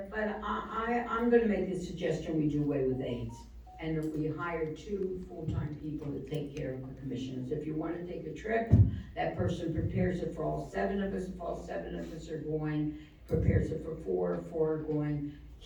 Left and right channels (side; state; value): both; identical; correlation 1.00